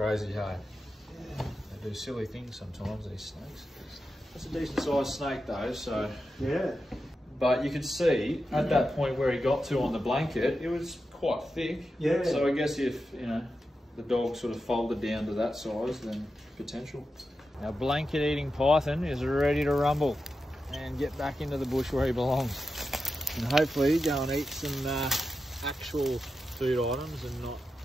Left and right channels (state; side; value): normal; both; correlation 0.90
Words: hey? Yeah. They do silly things sometimes, these snakes. That's a decent sized snake though, so... Yeah. But you could see at that point where he got to on the blanket, it was quite thick. Yeah. So I guess if, you know, the dog sort of folded down to that size, then potential. Our blanket eating python is ready to rumble and get back into the bush where he belongs. And hopefully go and eat some actual food items and not